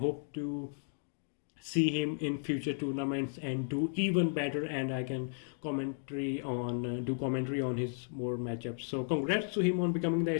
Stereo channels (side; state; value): right; silent; digital silence